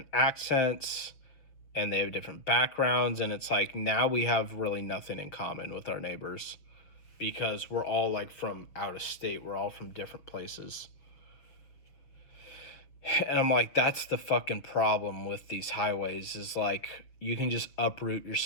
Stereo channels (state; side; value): late; right; 6.3 ms